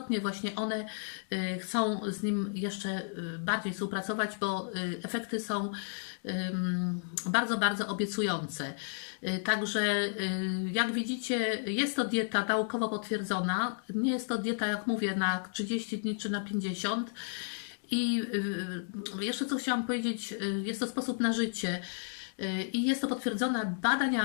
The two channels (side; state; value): right; silent; digital silence